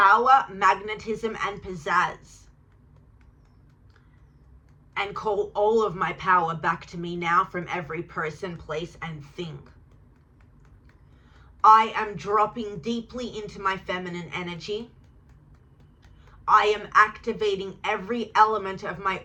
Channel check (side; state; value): both; identical; correlation 1.00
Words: magnetism, and pizzazz, and call all of my power back to me now from every person, place, and thing. I am dropping deeply into my feminine energy. I am activating every element of my